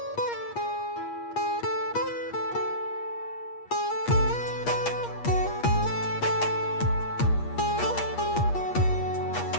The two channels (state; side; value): late; right; 8.5 ms